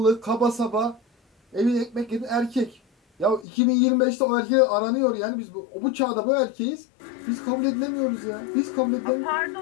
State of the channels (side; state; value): right; drops out; at 3.5 s